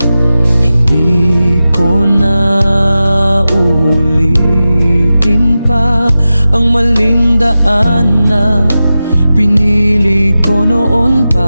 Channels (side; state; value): both; inverted; correlation -0.94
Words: Hindi ko na ulitin pa ang maling daan na pinili ko noon